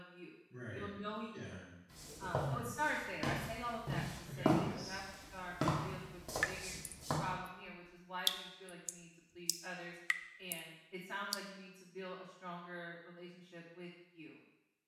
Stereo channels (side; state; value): both; identical; correlation 1.00